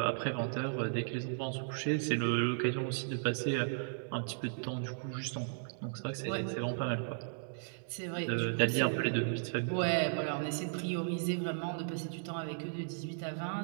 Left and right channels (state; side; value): silent; left; digital silence